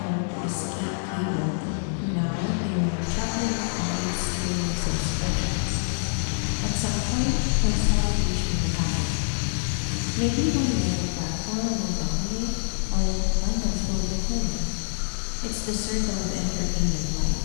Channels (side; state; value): right; silent; digital silence